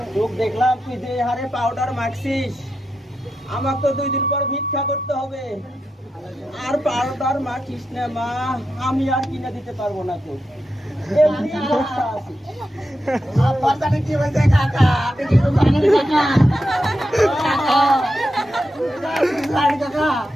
লোক দেখলাম তুই যে হারে পাউডার মাখছিস আমাকে তো 2 দিন পর ভিক্ষা করতে হবে আর পাউডার মাখিস না মা আমি আর কিনে দিতে পারবো না তো এমনি অবস্থা আছে আপনার কি বলছে কাকা আপনি কি জানেন কাকা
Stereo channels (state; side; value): normal; both; correlation 0.87